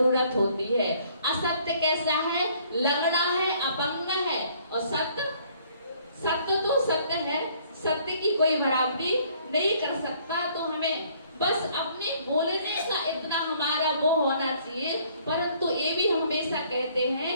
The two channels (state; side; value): inverted; both; correlation -0.61